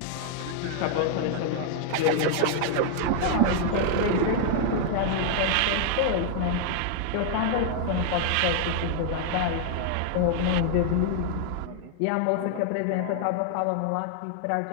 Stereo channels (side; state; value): both; different; correlation 0.00